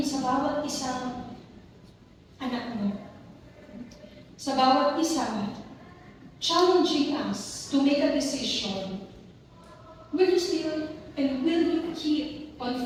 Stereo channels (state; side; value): identical; both; correlation 1.00